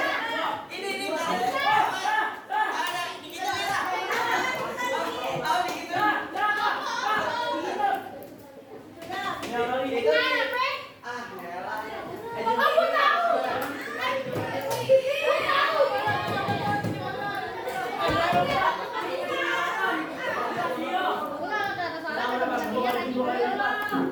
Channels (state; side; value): identical; both; correlation 1.00